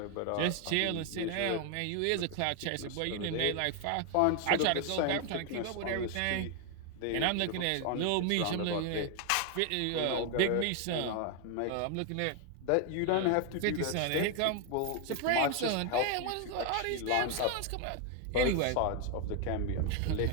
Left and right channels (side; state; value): both; different; correlation 0.01